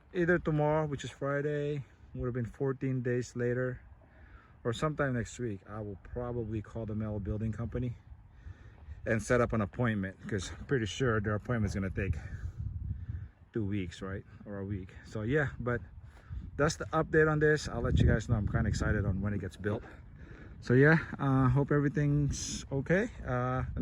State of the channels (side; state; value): both; identical; correlation 1.00